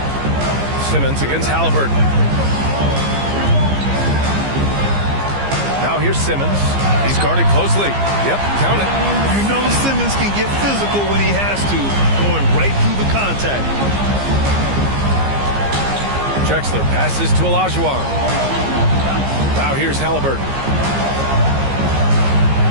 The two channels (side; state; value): left; late; 15 ms